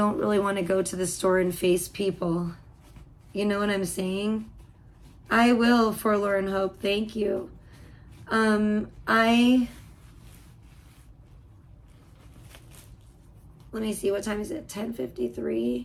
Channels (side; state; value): both; identical; correlation 1.00